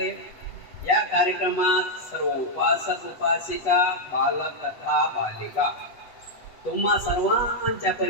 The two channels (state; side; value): late; right; 8.1 ms